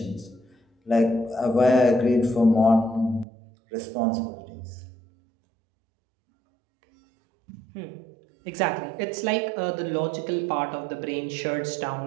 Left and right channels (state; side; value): drops out; left; at 3.2 s